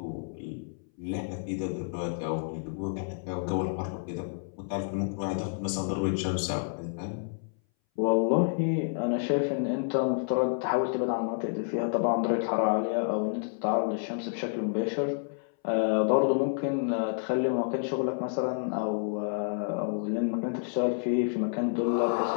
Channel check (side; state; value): right; silent; 58 dB below the other